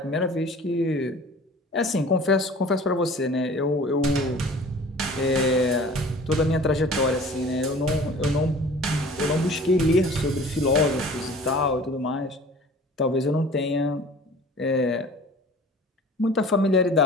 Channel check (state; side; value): normal; both; correlation 0.45